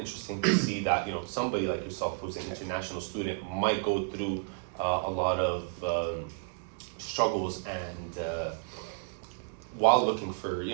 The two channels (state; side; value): silent; left; 57 dB below the other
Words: to see that, somebody like yourself who's an international student might go through a lot of struggles and while looking for